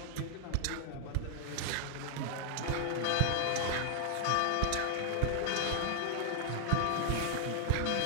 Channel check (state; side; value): different; both; correlation 0.00